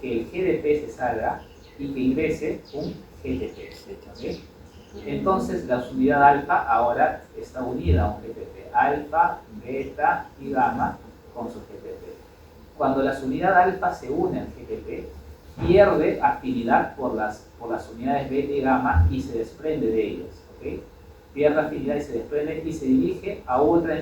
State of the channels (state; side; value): identical; both; correlation 1.00